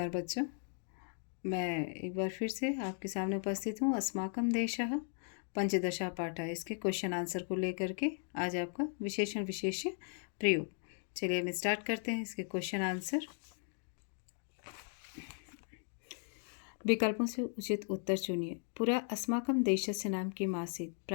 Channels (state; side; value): silent; right; 53 dB below the other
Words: बच्चों, मैं एक बार फिर से आपके सामने उपस्थित हूँ। अस्माकं देशः पंचदशा पाठः इसके क्वेश्चन आंसर को लेकर के आज आपका विशेषण विशेष्य प्रयोग। चलिए हम स्टार्ट करते हैं इसके क्वेश्चन आंसर। विकल्पों से उचित उत्तर चुनिए। पूरा अस्माकं देशस्य नाम की मासीत